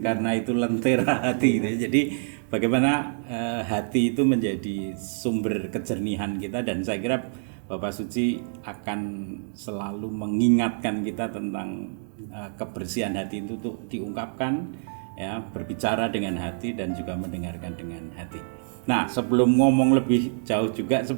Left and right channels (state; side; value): silent; left; digital silence